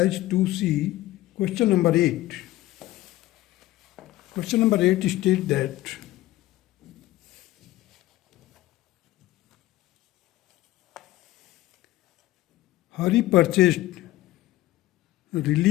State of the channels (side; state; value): right; quieter; 16.5 dB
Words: 2C, question number 8. Question number 8 states that Hari purchased